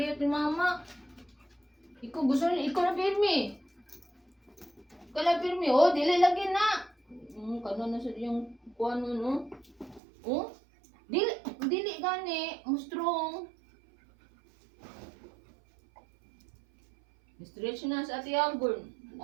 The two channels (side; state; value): left; drops out; at 10.0 s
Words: ni mama. Ikaw gusto niya, ikaw na pirmi. Ikaw na pirmi. Oh, dili lagi na. Kano na sa yung kuano no? Oh? Dili gani, mo strong. Stretch na sa Ate Agor.